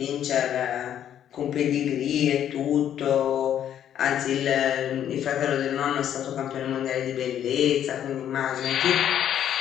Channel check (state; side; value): quieter; right; 10.2 dB